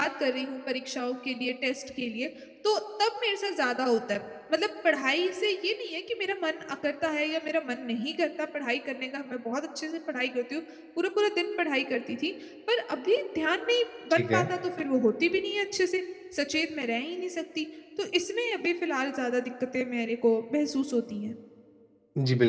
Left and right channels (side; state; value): both; identical; correlation 1.00